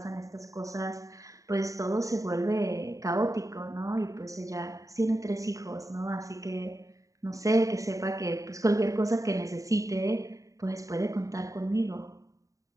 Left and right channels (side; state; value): left; late; 0.16 ms